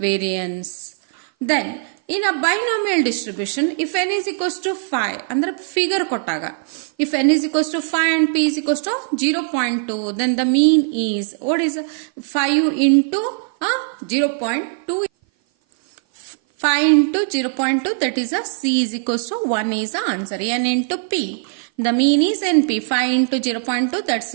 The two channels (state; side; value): silent; left; 56 dB below the other